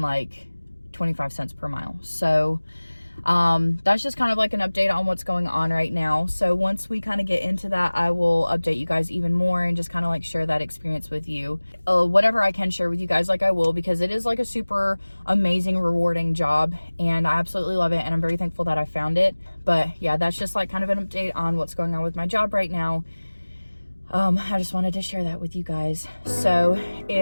like 25 cents per mile. So, that's just kind of like an update on what's going on right now. So once we kind of get into that, I will update you guys even more and just kind of like share that experience with you. Whatever I can share with you guys, like I will, because it is like a super amazing, rewarding job, and I absolutely love it, and I'm very thankful that I found it. But yeah, that's just like kind of an update on what's going on with my job right now. I just wanted to share that with you guys. So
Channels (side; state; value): both; inverted; correlation -1.00